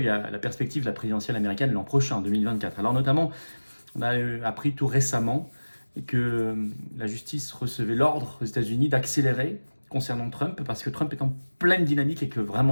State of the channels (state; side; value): inverted; both; correlation -1.00